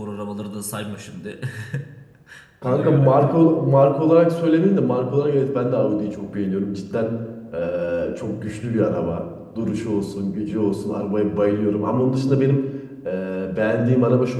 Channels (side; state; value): both; identical; correlation 1.00